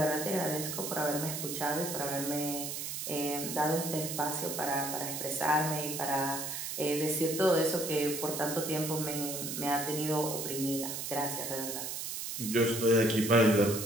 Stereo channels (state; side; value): noise; right; hiss, 5 dB below the sound